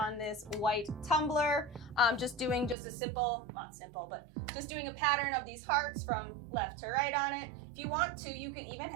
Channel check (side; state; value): left; drops out; at 2.8 s